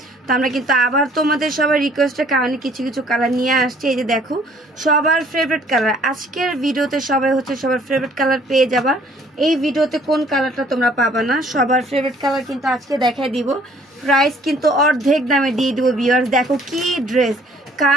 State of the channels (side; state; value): both; normal; correlation 0.58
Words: তো আমরা কিন্তু আবার তোমাদের সবার রিকোয়েস্টের কারণে কিছু কিছু কালার নিয়ে আসছি। এই যে দেখো সবার ফেভারিট কালার, আজকের ভিডিওতে সবাই হচ্ছে সবার ফেভারিট কালার পেয়ে যাবা। এই ভিডিওতে কোন কালারটা তোমরা পাবা না, সবার ফেভারিট কালার কিন্তু আজকে দেখাই দিব। প্রাইস কিন্তু অর্ধেক দামে দিয়ে দিব ভিউয়ার্স। দেখো কি ড্রেস,